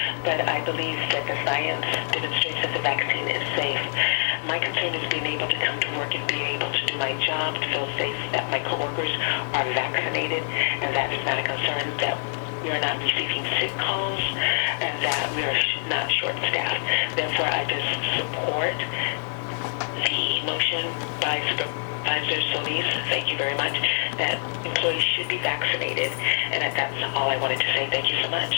but I believe that the science demonstrates that the vaccine is safe. My concern is being able to come to work and be able to do my job, to feel safe that my coworkers are vaccinated, and that is not a concern, that we are not receiving sick calls, and that we are not short-staffed. Therefore, I just support the motion by Supervisor Solis, thank you very much, that employees should be vaccinated, and that's all I wanted to say. Thank you so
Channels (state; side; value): silent; right; digital silence